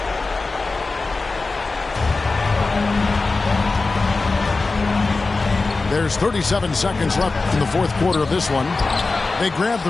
There's 37 seconds left in the fourth quarter of this one. They grab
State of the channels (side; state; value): right; quieter; 3.7 dB